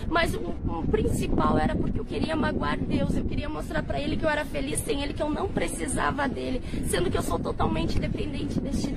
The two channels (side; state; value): both; identical; correlation 1.00